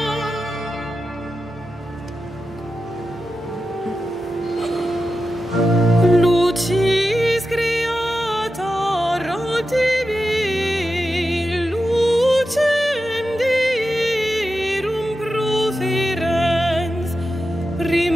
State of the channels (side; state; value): both; normal; correlation 0.91